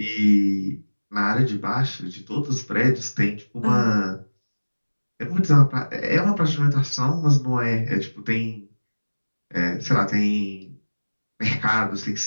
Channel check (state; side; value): inverted; both; correlation -1.00